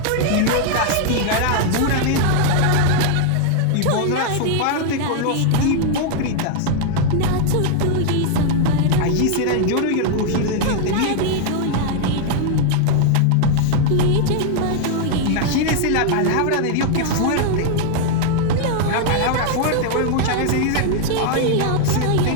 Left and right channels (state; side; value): different; both; correlation 0.00